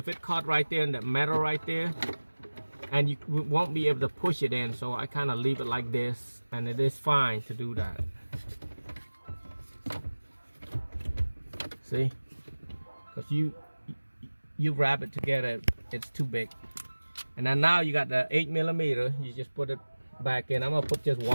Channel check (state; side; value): inverted; both; correlation -1.00